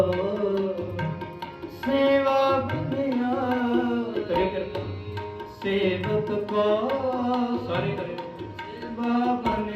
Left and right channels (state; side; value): identical; both; correlation 1.00